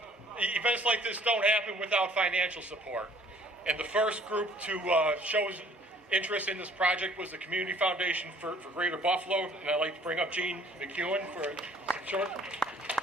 Events like this don't happen without financial support. And the first group to show interest in this project was the Community Foundation for Greater Buffalo. And I'd like to bring up Jean McEwen for a short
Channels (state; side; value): normal; both; correlation 0.55